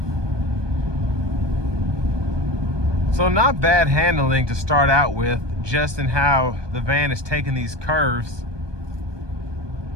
So not bad handling to start out with, just in how the van is taking these curves.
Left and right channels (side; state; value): left; late; 1.2 ms